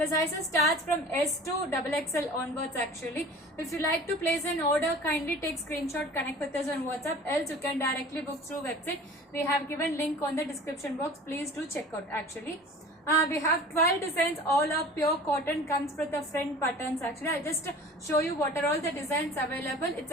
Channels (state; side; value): normal; both; correlation 0.42